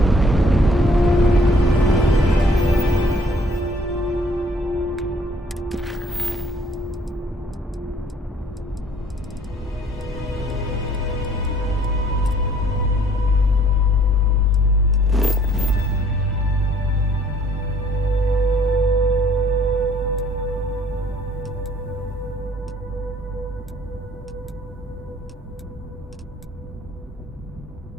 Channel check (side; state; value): both; normal; correlation 0.60